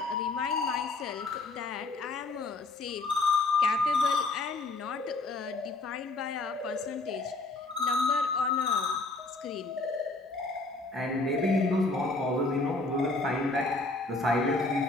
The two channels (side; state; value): right; quieter; 3.2 dB